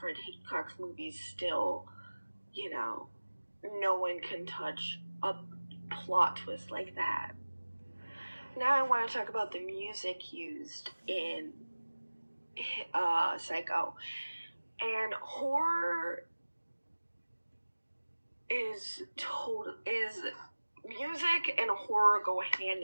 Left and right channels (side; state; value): both; inverted; correlation -1.00